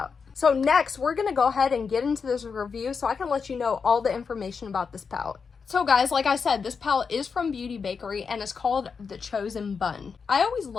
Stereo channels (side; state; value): right; quieter; 5.6 dB